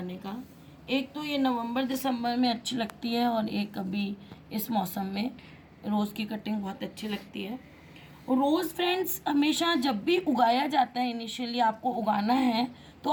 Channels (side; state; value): both; identical; correlation 1.00